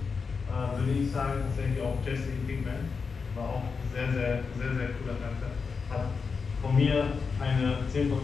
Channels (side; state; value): right; quieter; 5.2 dB